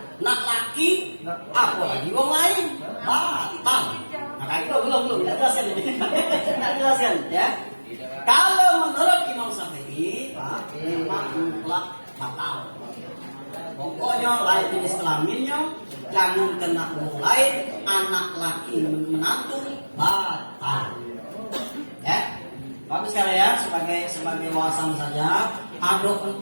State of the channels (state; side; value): inverted; both; correlation -1.00